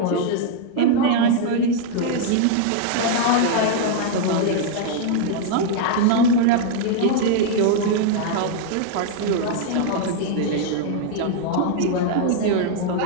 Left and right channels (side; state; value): both; different; correlation 0.00